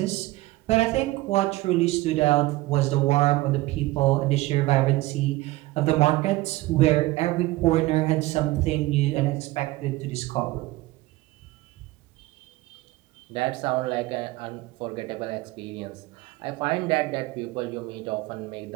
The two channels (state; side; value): quieter; left; 19.0 dB